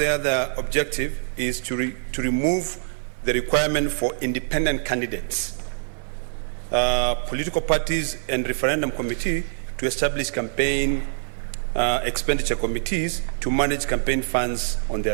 other objective is to remove the requirement for independent candidates, political parties and referendum committee to establish campaign expenditure committees to manage campaign funds on their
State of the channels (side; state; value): left; silent; digital silence